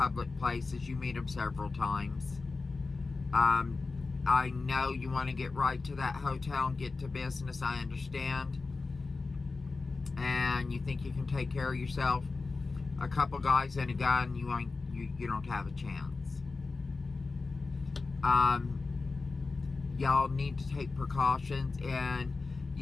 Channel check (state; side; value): quieter; right; 3.9 dB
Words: places. You meet them several times. I know you want to get right to that hotel and get to business. I understand. And you think you can take care of yourself. A couple guys and a gun, you don't have a chance. Y'all need to take precautions. And